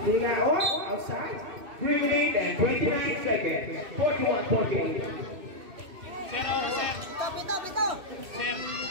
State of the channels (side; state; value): left; late; 2.6 ms